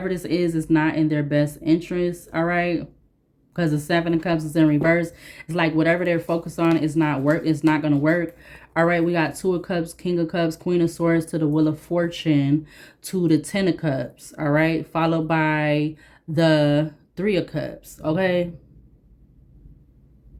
this is not in their best interest. All right. because the Seven of Cups is in reverse. It's like whatever they're focused on is not work. It's not going to work. All right, we got Two of Cups, King of Cups, Queen of Swords to the Wheel of Fortune to the Ten of Cups. All right, followed by the Three of Cups. Okay.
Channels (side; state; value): both; identical; correlation 1.00